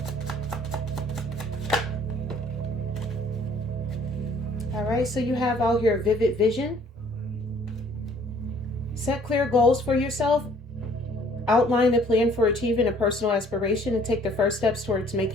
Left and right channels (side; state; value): both; normal; correlation 0.58